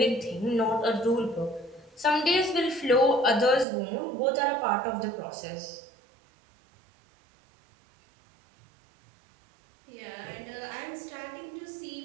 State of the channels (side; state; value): left; drops out; at 3.7 s